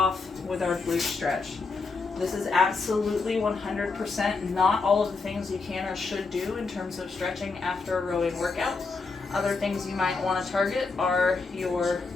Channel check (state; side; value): quieter; right; 4.2 dB